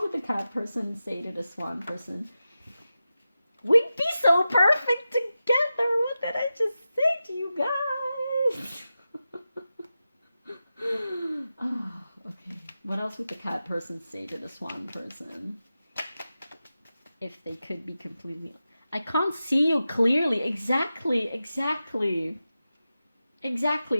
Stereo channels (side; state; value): both; inverted; correlation -0.92